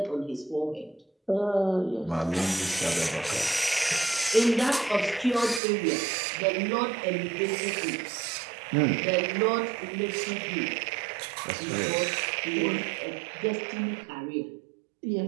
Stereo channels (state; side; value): drops out; left; at 5.6 s